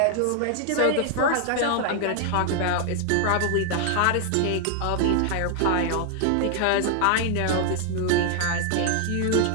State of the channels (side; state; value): both; different; correlation 0.00